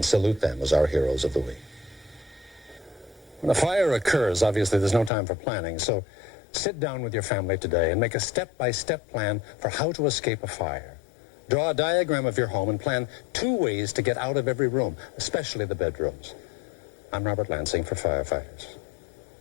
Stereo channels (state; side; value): drops out; right; at 5.1 s